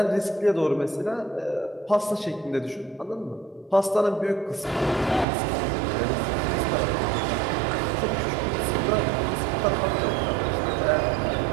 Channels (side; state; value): left; drops out; at 5.2 s